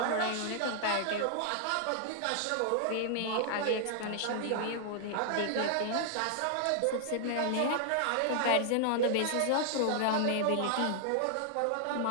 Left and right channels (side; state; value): both; different; correlation -0.01